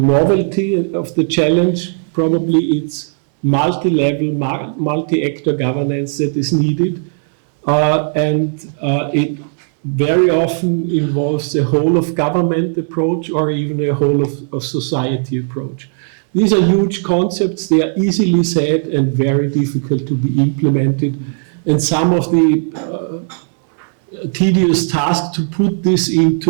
of the challenge, probably it's multi-level, multi-actor governance that is needed, and it very often involves a whole of government approach or even a whole of society approach. These are huge concepts, they are easily said and very difficult to be implemented, and some of the tedious task to put this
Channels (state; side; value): silent; left; digital silence